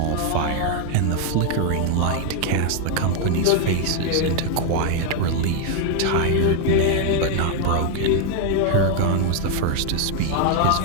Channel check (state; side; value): different; both; correlation 0.00